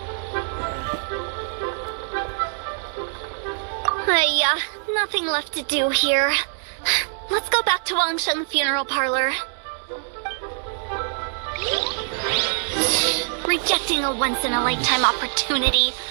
Nothing left to do here. Let's go back to Wangsheng Funeral Parlor. Rejecting a once-in-a-lifetime opportunity.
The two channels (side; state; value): left; silent; digital silence